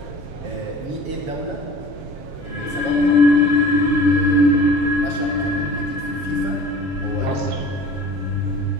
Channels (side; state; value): left; late; 7.2 ms